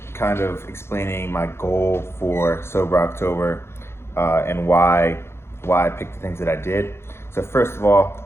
kind of explaining my goal for Sober October and why I picked the things that I did. So first of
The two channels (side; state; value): right; late; 0.12 ms